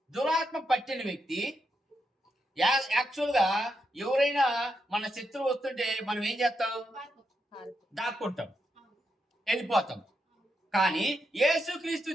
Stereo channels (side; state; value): both; normal; correlation 0.83